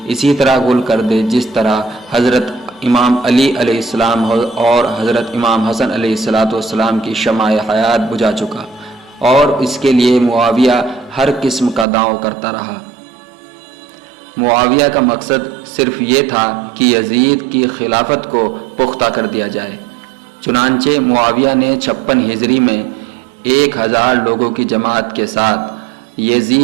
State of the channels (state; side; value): drops out; left; at 11.9 s